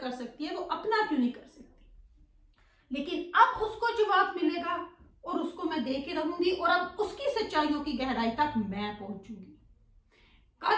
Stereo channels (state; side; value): identical; both; correlation 1.00